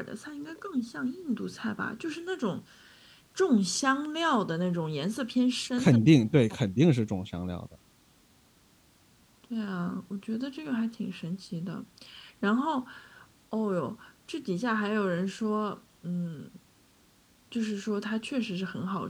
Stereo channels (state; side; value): identical; both; correlation 1.00